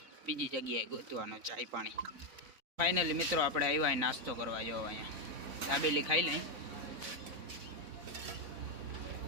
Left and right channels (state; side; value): late; left; 4.0 ms